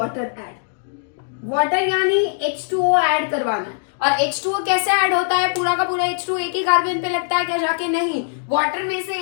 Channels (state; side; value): silent; right; digital silence